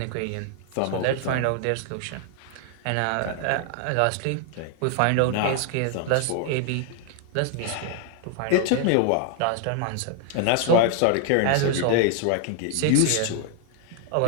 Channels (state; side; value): different; both; correlation 0.00